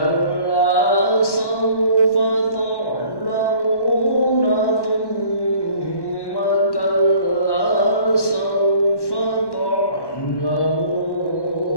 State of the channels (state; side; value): late; right; 1.1 ms